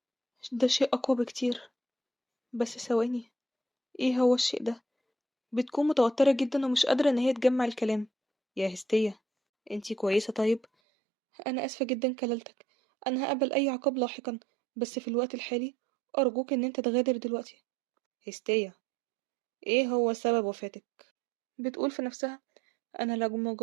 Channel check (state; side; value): drops out; left; at 10.7 s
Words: ده شيء أقوى بكتير. بس ثواني، ايه هو الشيء ده؟ بتكون متوترة جدا ومش قادرة ان هي تجمع الكلام. يا هستية، انتي كويسة طيب؟ انا اسفة جدا كللتك، انا هقبل اي عقاب لاحقا، بس في الوقت الحالي ارجوك ان انت تغادر دلوقتي. هستية، ايه هو سبب وفاتك؟ بتقول في نفسها: انا لو ما